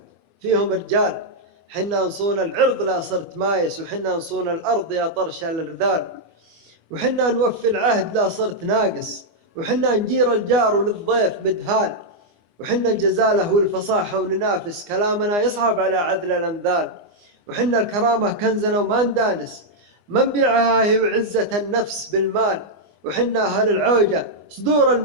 فيهم رجال. حنا نصون العرض لا صرت مايس، وحنا نصون الأرض يا طرش الرذال، وحنا نوفي العهد لا صرت ناقص، وحنا نجير الجار وللضيف مدهال، وحنا الجزالة والفصاحة وننافس، كلامنا يصعب على عذل الأنذال، وحنا الكرامة كنزنا وما ندانس، ما نبيعها هي وعزة النفس بالمال، وحنا أهل العوجة صدور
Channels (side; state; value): left; late; 24 ms